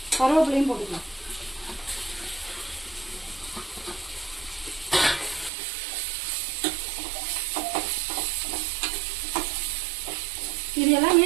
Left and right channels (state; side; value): drops out; left; at 5.5 s